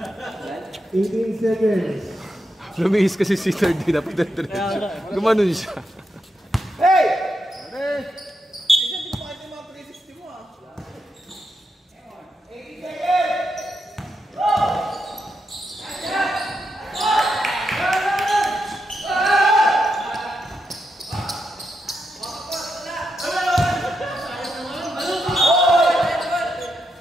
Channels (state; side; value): normal; both; correlation 0.84